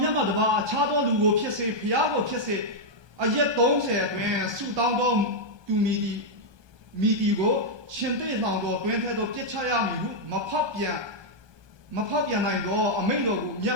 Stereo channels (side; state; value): left; late; 1.2 ms